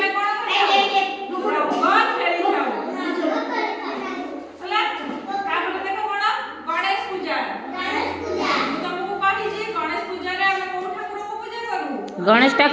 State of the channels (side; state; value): both; identical; correlation 1.00